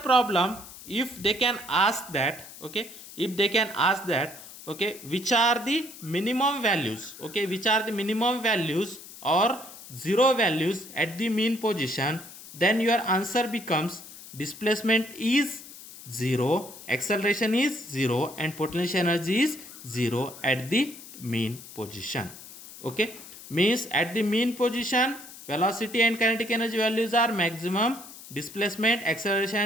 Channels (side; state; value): left; noise; hiss, 16 dB below the sound